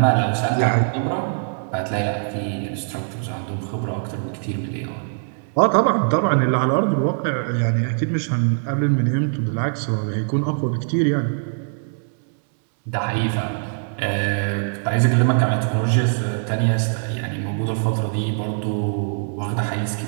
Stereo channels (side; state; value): left; silent; digital silence